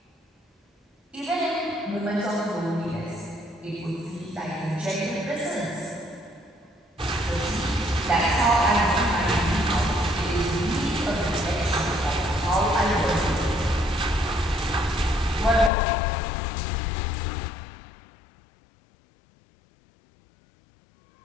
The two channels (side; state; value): right; drops out; at 15.7 s